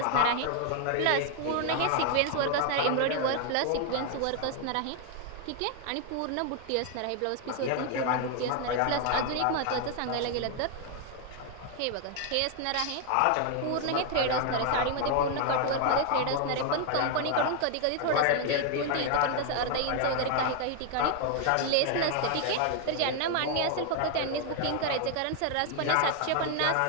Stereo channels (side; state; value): both; different; correlation 0.00